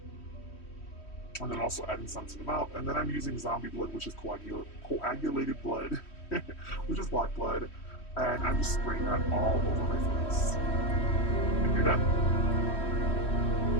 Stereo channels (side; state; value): right; late; 3.1 ms